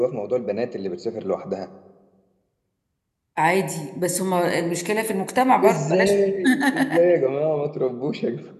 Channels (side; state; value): both; identical; correlation 1.00